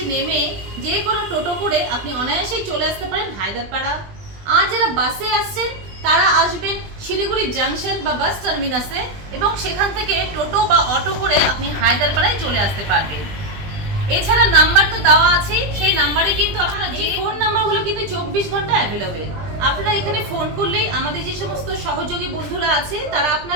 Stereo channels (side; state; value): left; late; 20 ms